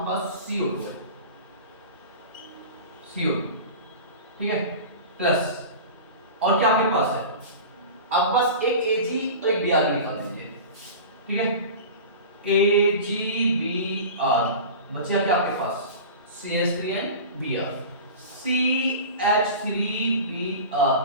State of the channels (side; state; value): both; inverted; correlation -0.34